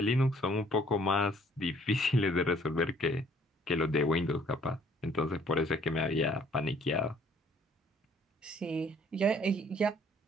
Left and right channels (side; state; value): both; normal; correlation 0.59